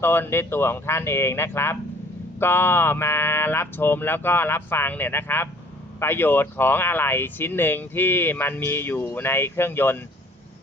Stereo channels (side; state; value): both; normal; correlation 0.55